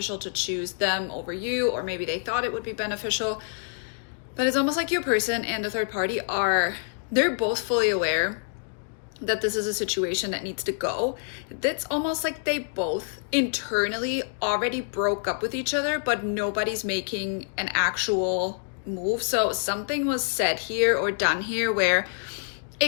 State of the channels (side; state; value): right; silent; digital silence